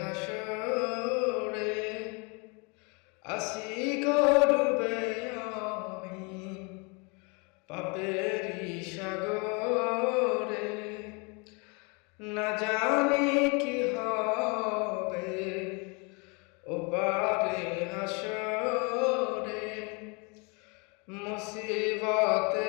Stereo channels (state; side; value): quieter; right; 31.7 dB